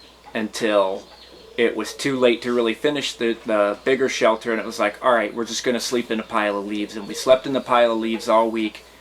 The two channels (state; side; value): identical; both; correlation 1.00